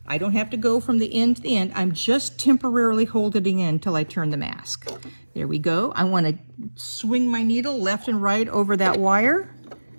I don't have to go from the end to the end. I'm just temporarily holding it in till I turn the mask. There we go. I want to swing my needle left and right over that wire,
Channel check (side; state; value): both; inverted; correlation -1.00